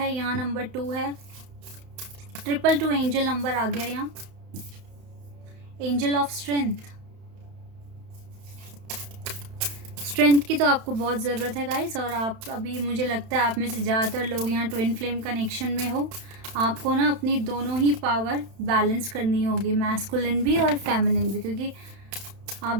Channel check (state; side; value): late; left; 31 ms